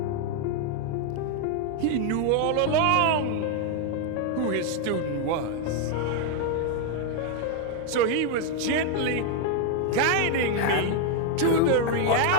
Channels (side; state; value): both; different; correlation 0.01